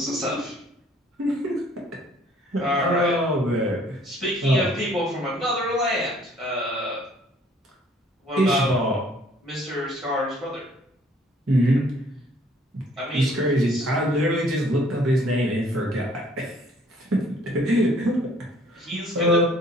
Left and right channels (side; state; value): both; normal; correlation 0.59